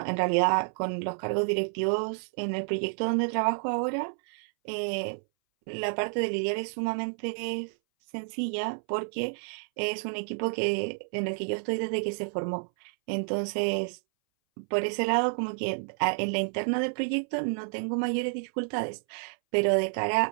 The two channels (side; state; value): left; silent; 58 dB below the other